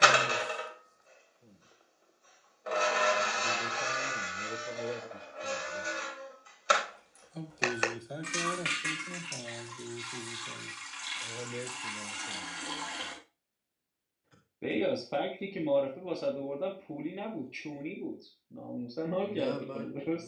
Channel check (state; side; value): identical; both; correlation 1.00